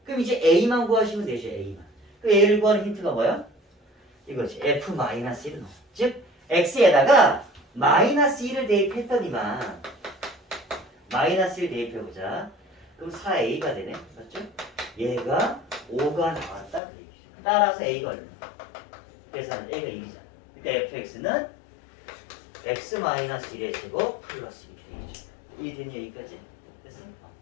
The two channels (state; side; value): drops out; right; at 16.8 s